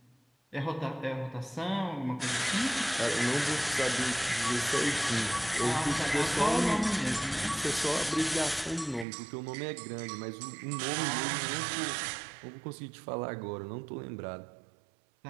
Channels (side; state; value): left; drops out; at 9.1 s